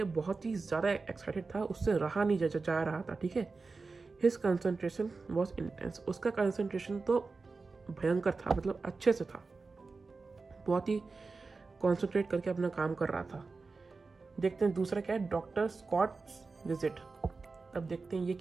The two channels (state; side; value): quieter; left; 4.1 dB